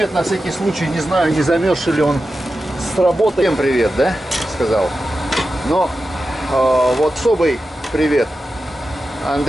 на всякий случай. Не знаю, не замерзший ли он с работы. Всем привет, да? Сказал. Но вот особый привет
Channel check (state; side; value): normal; both; correlation 0.91